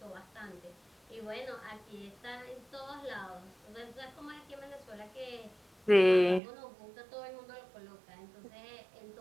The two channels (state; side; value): drops out; left; at 6.4 s